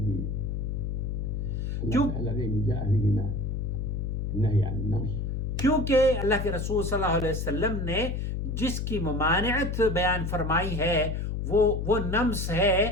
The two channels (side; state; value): left; noise; hum, 2 dB below the sound